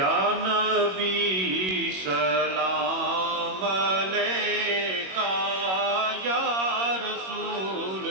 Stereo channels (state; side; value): late; left; 21 ms